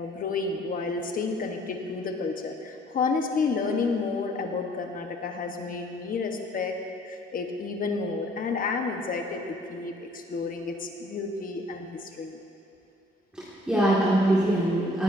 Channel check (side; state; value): both; normal; correlation 0.58